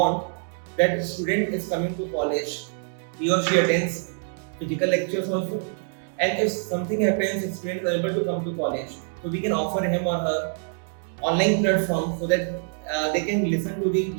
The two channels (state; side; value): silent; left; 61 dB below the other